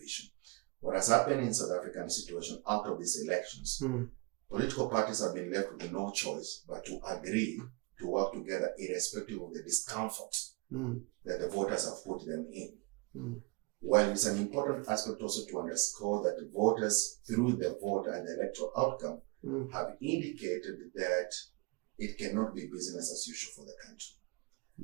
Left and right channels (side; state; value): left; quieter; 29.6 dB